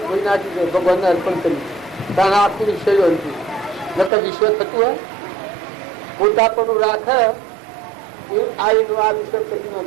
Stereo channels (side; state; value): left; drops out; at 4.1 s